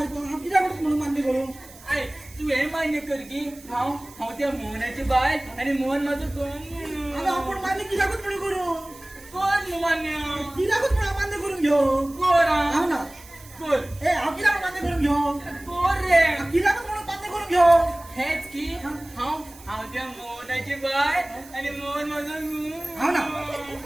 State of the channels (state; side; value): noise; right; hiss, 21 dB below the sound